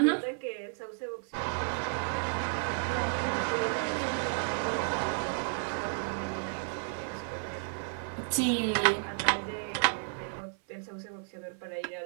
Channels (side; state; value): left; silent; 56 dB below the other